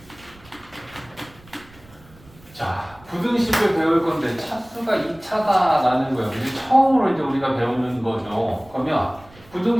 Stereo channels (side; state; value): right; noise; rumble, 24 dB below the sound